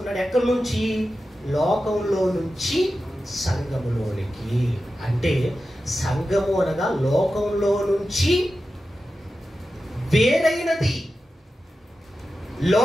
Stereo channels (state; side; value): normal; both; correlation 0.92